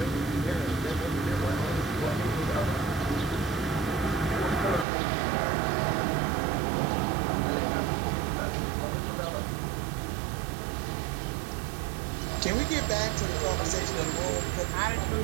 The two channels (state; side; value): drops out; left; at 4.9 s